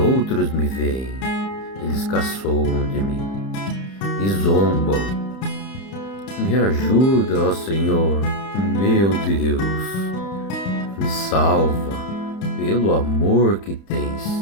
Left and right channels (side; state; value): right; late; 31 ms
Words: me veem, eles caçoam de mim e zombam. Me ajuda, ó Senhor, meu Deus. Me salva pelo amor que